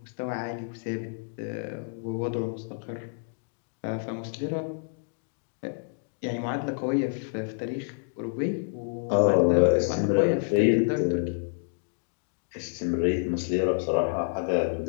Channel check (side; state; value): right; silent; digital silence